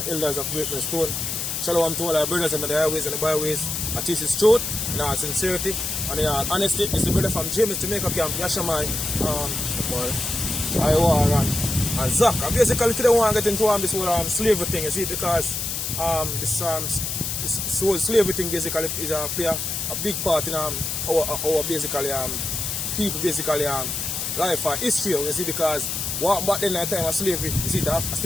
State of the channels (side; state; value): left; noise; hiss, 3 dB below the sound